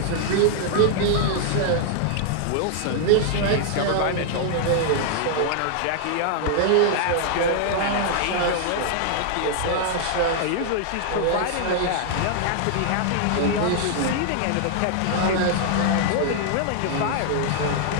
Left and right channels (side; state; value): both; different; correlation -0.01